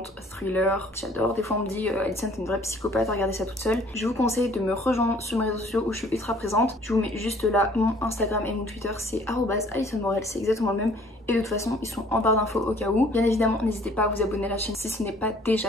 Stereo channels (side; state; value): both; normal; correlation 0.56